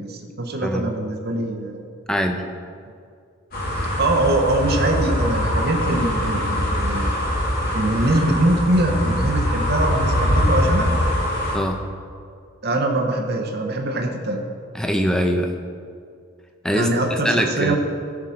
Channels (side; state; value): both; normal; correlation 0.54